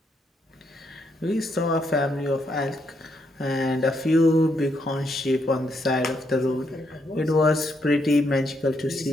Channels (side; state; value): both; normal; correlation 0.77